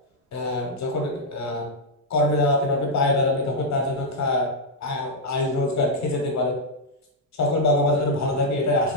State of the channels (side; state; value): both; normal; correlation -0.04